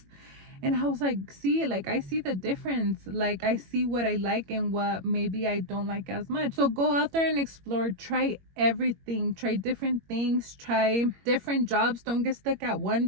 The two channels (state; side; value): late; left; 21 ms